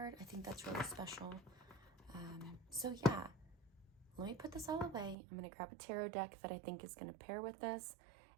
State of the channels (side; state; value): left; drops out; at 5.2 s